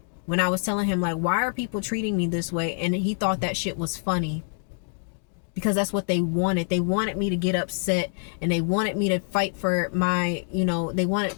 when I was telling him, like, why are people treating me this way? And he thought that shit was funny, because that's what they wanted. They wanted me to get upset, and they wanted me to fight for my, they wanted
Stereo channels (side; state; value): right; silent; 61 dB below the other